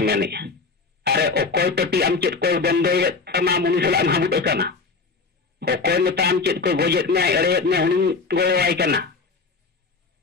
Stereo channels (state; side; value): quieter; right; 4.4 dB